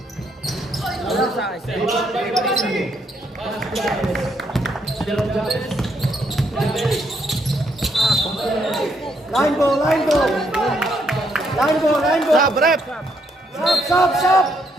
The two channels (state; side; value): normal; both; correlation 0.74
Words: Line ball. Line ball, line ball. Sab, rep!